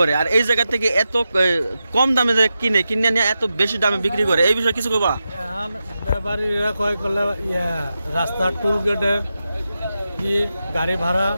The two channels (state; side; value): inverted; both; correlation -0.90